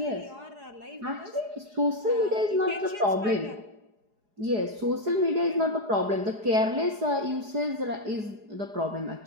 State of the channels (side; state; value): left; late; 4.8 ms